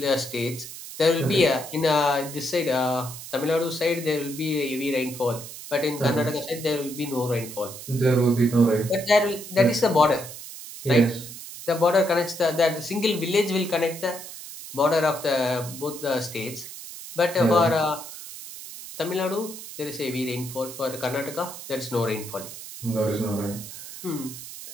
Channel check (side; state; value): right; noise; hiss, 12 dB below the sound